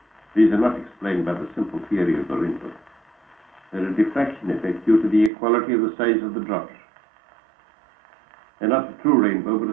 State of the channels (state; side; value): drops out; left; at 5.3 s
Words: These are not explained by the simple theory of the rainbow. They're a diffraction effect due to the equality of the size of the drops. They're not a true rainbow, but